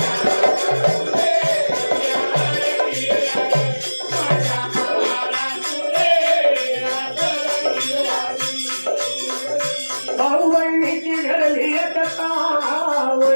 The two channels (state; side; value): inverted; both; correlation -1.00